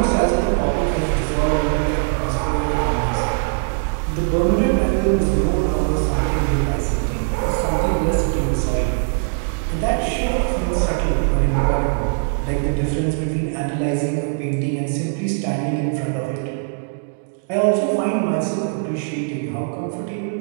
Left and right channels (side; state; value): left; silent; 65 dB below the other